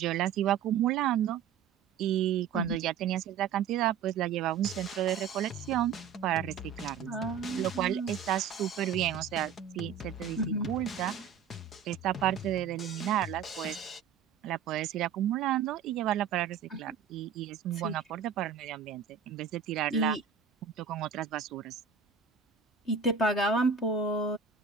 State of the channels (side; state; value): left; quieter; 7.2 dB